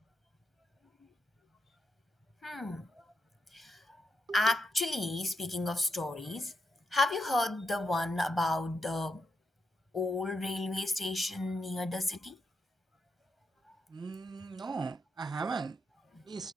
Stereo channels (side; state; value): both; normal; correlation 0.83